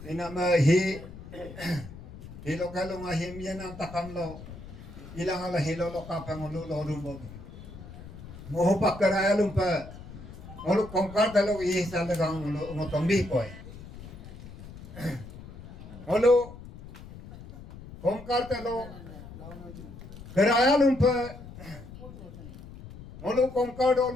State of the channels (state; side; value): noise; left; rumble, 15 dB below the sound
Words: inama hi hilo kalunga him yan ang takam lo ilang ala hilo lo kapangulu lodum bom moho pakaraya lumpa ngolu kongkar talo i sa dagang ngotombi koy ngolu kongkar talo keraya lumpa ngolu kongkar do